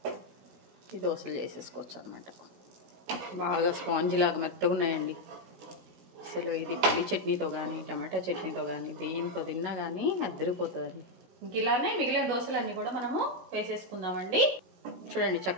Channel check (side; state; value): left; late; 16 ms